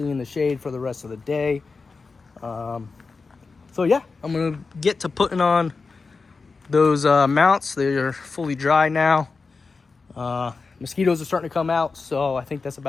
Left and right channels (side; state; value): right; quieter; 4.3 dB